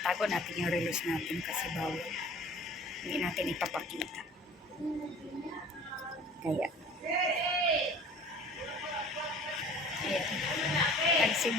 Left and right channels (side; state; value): both; normal; correlation 0.46